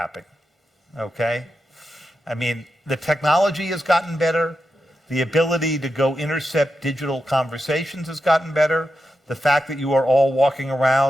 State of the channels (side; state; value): both; normal; correlation 0.88